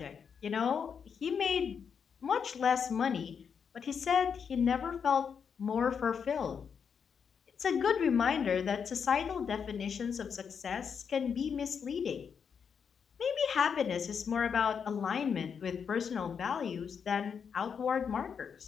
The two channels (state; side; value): quieter; right; 6.8 dB